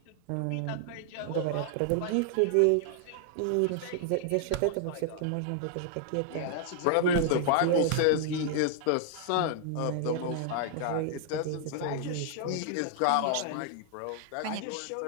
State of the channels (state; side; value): different; both; correlation 0.00